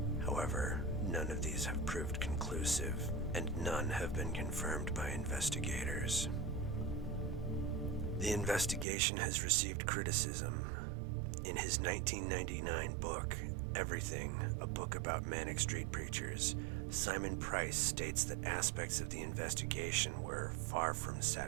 However, none of these have proved conclusive, and none have been confirmed by investigators. The investigation has received criticism. In his 1999 book, Everything, a book about Manic Street Preachers, Simon Price states that aspects of the investigation were far from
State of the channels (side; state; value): left; drops out; at 8.8 s